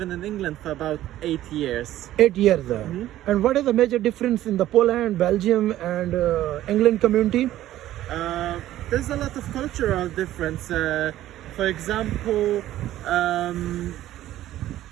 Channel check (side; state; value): left; quieter; 13.8 dB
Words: in England for about 8 years. 8 years. And what is the major difference in the Poland, Belgium, and England community? There's a lot of cultural difference. For example,